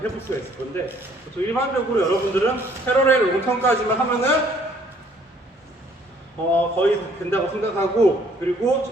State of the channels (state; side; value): normal; both; correlation 0.61